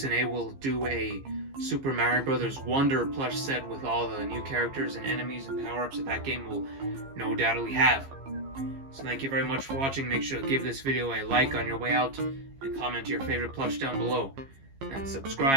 will do a Super Mario Bros. Wonder plush set with all the new characters and enemies and power-ups that game will no doubtly have. So thank you very much for watching. Make sure to give this video a like on your way out, and comment your favorite plush down below. And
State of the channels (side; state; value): left; late; 15 ms